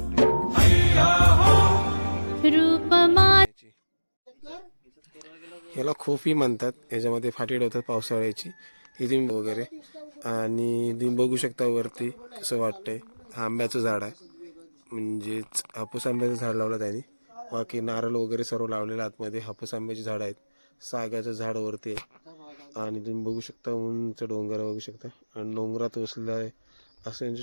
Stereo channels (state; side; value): inverted; both; correlation -1.00